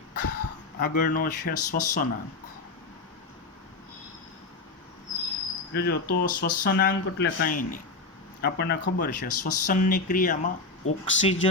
આગળનો છે શ્વસનાંક. જોજો, તો શ્વસનાંક એટલે કાંઈ નહીં, આપણને ખબર છે શ્વસનની ક્રિયામાં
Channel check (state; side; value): quieter; right; 3.6 dB